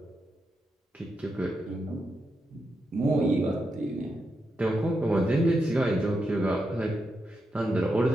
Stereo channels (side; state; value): both; normal; correlation 0.85